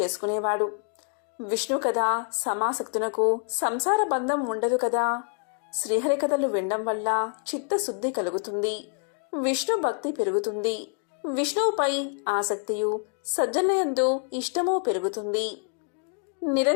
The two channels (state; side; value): quieter; right; 39.4 dB